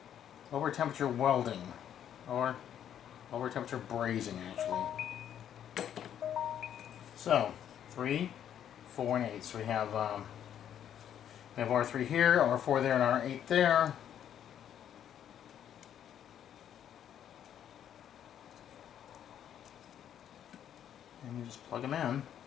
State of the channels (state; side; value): quieter; right; 9.8 dB